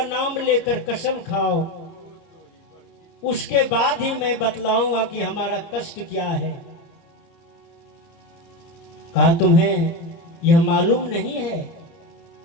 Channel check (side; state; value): right; late; 30 ms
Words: नाम लेकर कसम खाओ, उसके बाद ही मैं बतलाऊंगा कि हमारा कष्ट क्या है। कहा तुम्हें यह मालूम नहीं है